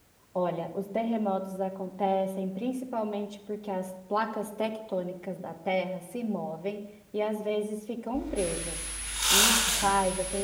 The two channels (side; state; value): both; identical; correlation 1.00